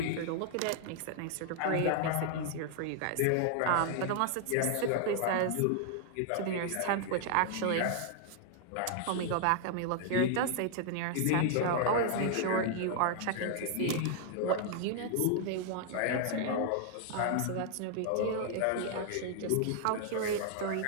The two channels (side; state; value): both; different; correlation 0.00